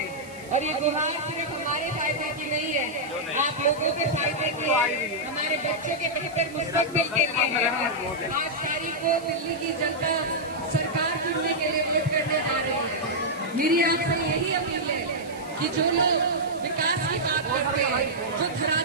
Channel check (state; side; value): noise; right; hiss, 21 dB below the sound